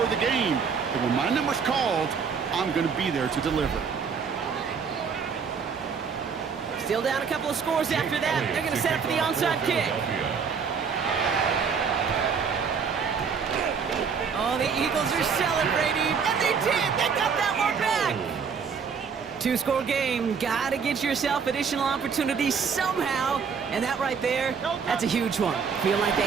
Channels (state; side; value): quieter; left; 6.1 dB